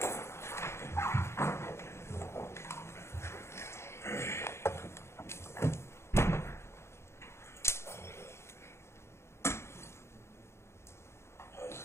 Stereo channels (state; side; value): late; right; 0.13 ms